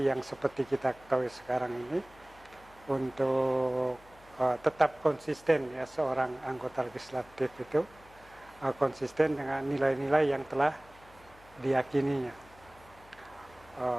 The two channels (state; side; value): noise; left; hum, 25 dB below the sound